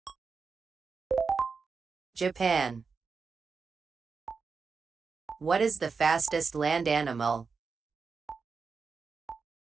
Japan. What is the fastest land animal?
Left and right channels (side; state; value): left; quieter; 5.1 dB